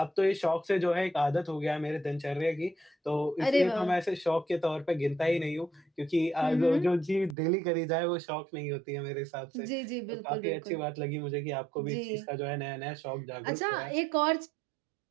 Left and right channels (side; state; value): left; drops out; at 7.4 s